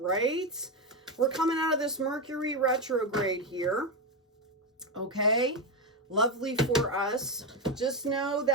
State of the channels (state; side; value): normal; both; correlation 0.09